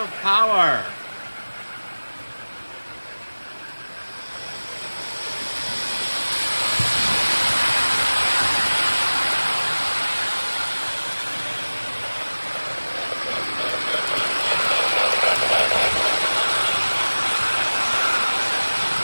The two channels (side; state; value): both; inverted; correlation -1.00